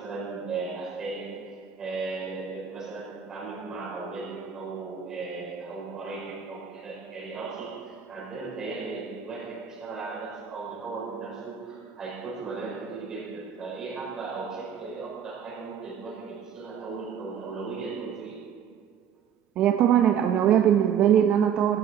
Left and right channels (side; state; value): left; quieter; 8.2 dB